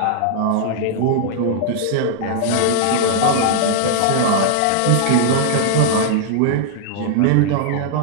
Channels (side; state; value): both; different; correlation -0.01